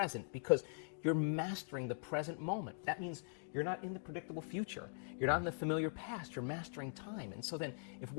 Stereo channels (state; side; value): silent; right; digital silence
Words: because you're mastering the present moment. That means you're not in the predictable future. You're not in the familiar past. You're mastering time. And so then, if